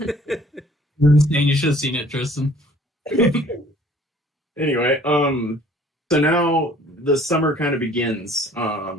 should have seen it, Tristan. anyway, so now the summer kind of begins.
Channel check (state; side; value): normal; both; correlation 0.55